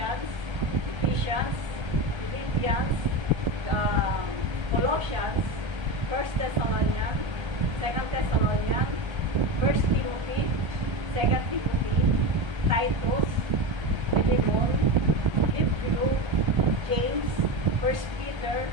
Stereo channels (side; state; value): left; late; 1.3 ms